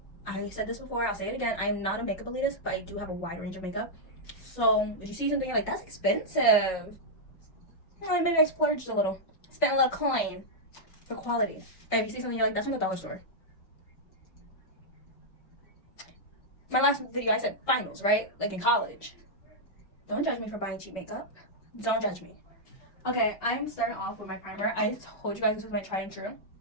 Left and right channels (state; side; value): late; right; 5.4 ms